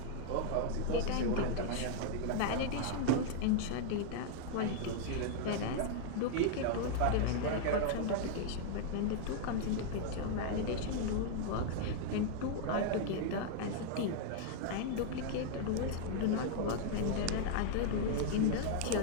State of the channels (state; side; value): different; both; correlation -0.01